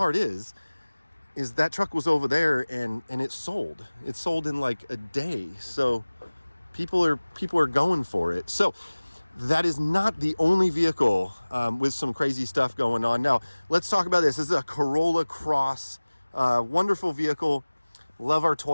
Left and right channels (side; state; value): both; inverted; correlation -1.00